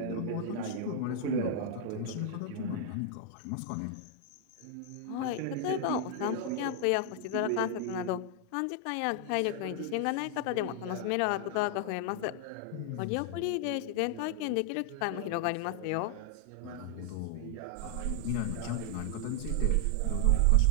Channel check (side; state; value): both; different; correlation 0.00